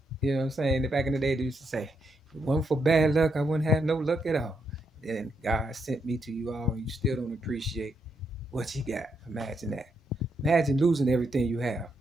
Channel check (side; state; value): both; normal; correlation 0.79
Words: You know what I'm saying? Back in the day, they used to say, if it wasn't for bad luck, I wouldn't have no luck at all. Then God sent me to you all, and you still don't appreciate what you got. Imagine that. Imagine losing everything you have